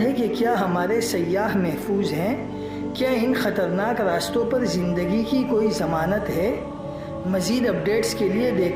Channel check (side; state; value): both; identical; correlation 1.00